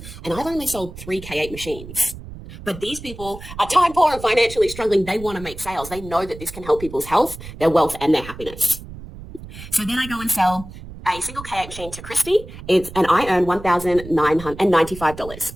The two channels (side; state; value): right; noise; rumble, 14 dB below the sound